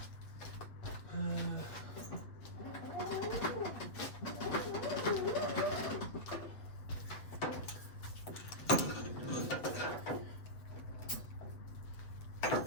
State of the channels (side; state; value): right; late; 7.8 ms